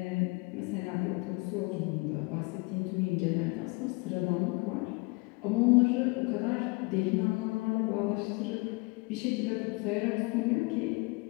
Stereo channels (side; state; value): right; quieter; 27.6 dB